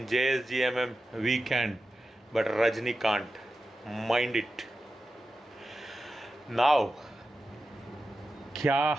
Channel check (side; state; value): both; normal; correlation 0.92